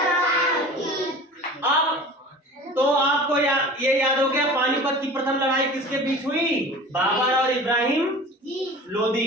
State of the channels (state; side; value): normal; both; correlation 0.39